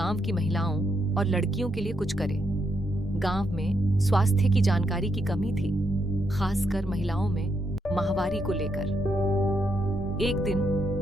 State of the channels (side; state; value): both; normal; correlation 0.79